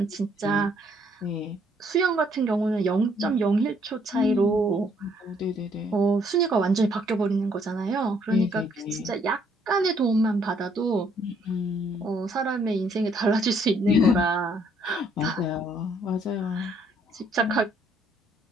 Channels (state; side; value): normal; both; correlation 0.67